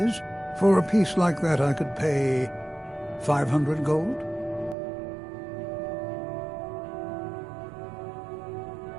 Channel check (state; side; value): drops out; left; at 4.8 s